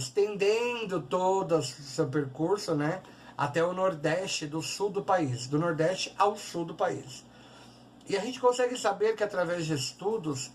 todo o seu percurso, né, até o nordeste do sul do país, do nordeste ao sul do país. E a gente consegue saber que através de estudos,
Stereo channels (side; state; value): both; identical; correlation 1.00